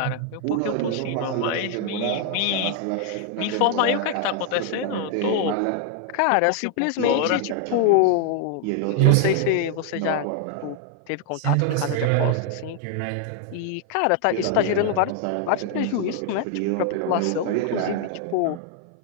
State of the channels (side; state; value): both; different; correlation 0.00